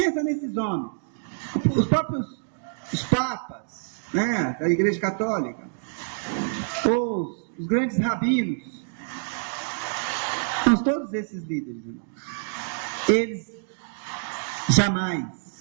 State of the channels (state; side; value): silent; left; digital silence